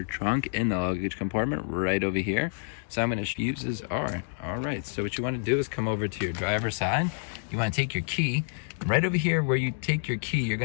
trunk in the luggage compartment right over here. So I'm going to fuses are all right. So what you want to do is come over to your driver's side. You want to take your key right over here. Where you take your key, you're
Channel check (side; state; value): right; silent; digital silence